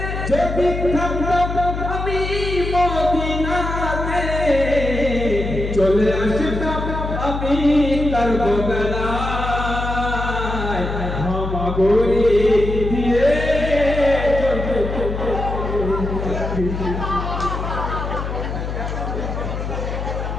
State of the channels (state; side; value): noise; left; hum, 4 dB below the sound